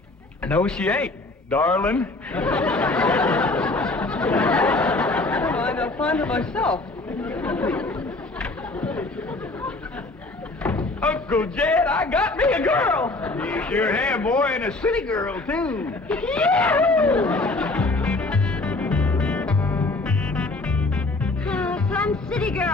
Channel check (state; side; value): quieter; right; 3.1 dB